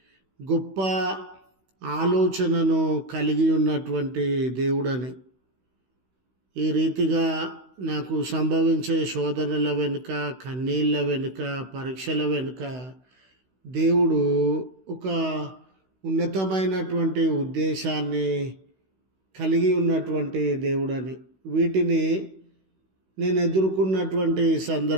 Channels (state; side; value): late; left; 16 ms